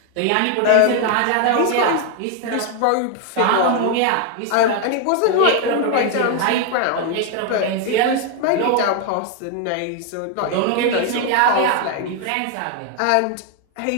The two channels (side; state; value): both; different; correlation 0.01